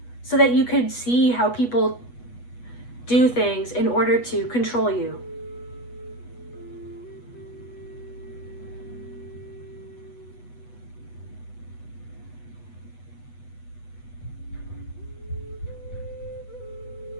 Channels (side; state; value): right; late; 8.2 ms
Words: so that you could see how people do things in order to control you.